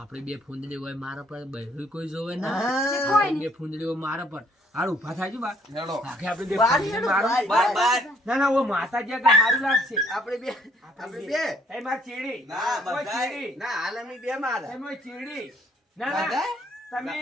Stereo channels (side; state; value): both; normal; correlation 0.64